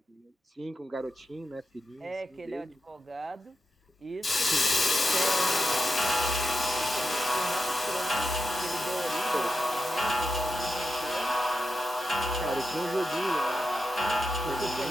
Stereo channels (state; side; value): normal; both; correlation 0.89